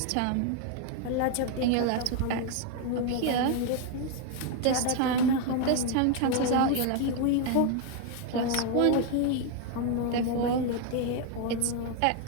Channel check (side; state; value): both; different; correlation 0.01